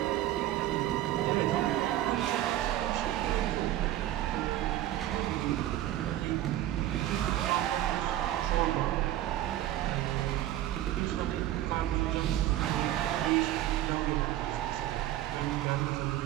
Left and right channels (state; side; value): quieter; left; 13.6 dB